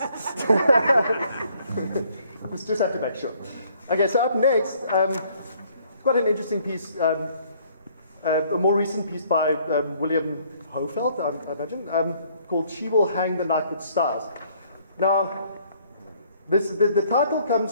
just have to make sure. Okay, so up next, quite an interesting piece, a more recent piece by William Hofeld, I imagine, called "She Will Hang the Night with Stars." Now, the title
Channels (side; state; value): both; inverted; correlation -0.63